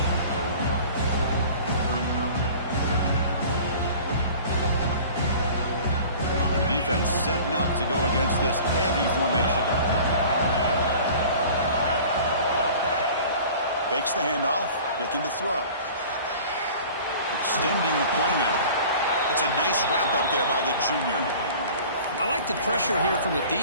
The defense setting up to go against this heavy formation. Fakes the handoff, looking to throw. Extending the play now. That's a nice wrap up there by the junior. I like the pressure here from the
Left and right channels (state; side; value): inverted; both; correlation -0.44